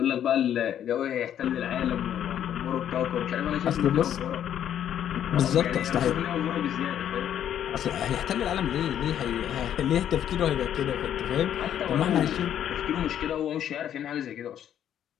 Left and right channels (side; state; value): right; quieter; 10.1 dB